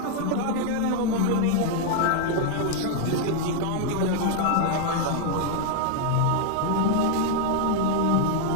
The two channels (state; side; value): different; both; correlation 0.00